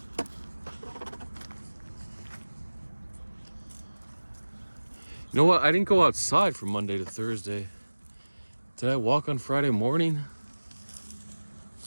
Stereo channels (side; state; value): both; inverted; correlation -1.00